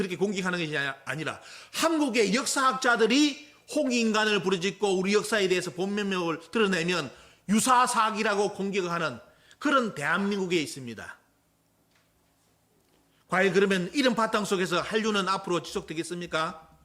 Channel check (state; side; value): identical; both; correlation 1.00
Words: 공격하는 것이 아니라 한국의 역사학자들이 홍익인간을 부르짖고 우리 역사에 대해서 본면목을 드러내면 유사사기라고 공격하는 그런 대한민국에 있습니다. 과연 그러면 이런 바탕 속에서 한류는 앞으로 지속되겠습니까?